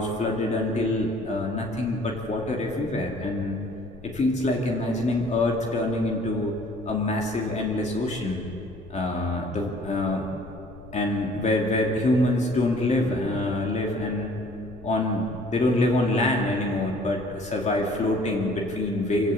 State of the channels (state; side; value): noise; left; rumble, 19 dB below the sound